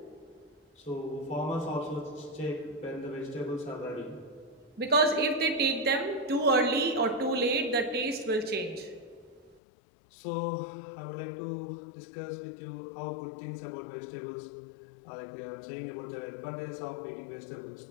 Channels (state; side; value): drops out; right; at 9.6 s